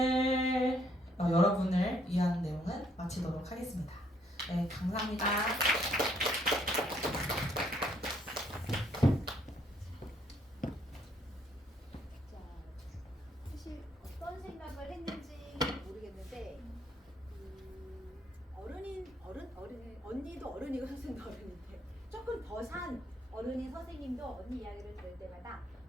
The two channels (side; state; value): both; normal; correlation 0.68